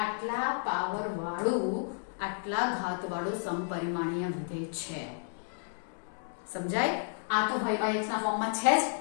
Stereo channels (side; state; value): right; silent; digital silence